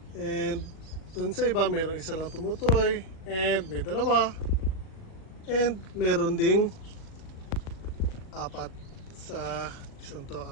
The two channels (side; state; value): right; late; 38 ms